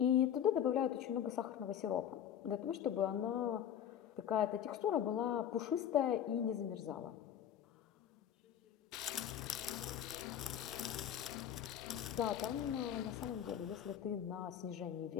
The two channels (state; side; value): quieter; right; 9.7 dB